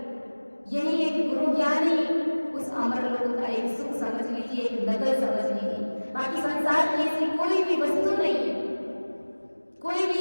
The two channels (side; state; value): both; inverted; correlation -1.00